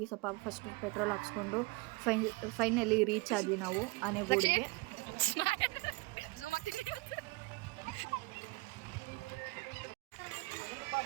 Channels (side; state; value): left; quieter; 25.2 dB